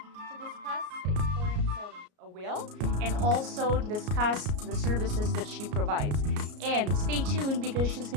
to discuss the importance of a will and also discuss the services that she provides. And stay tuned because she's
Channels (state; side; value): late; left; 33 ms